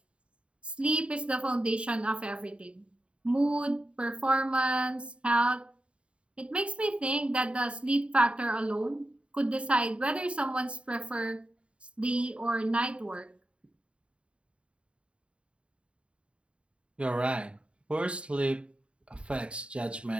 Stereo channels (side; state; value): left; late; 0.059 ms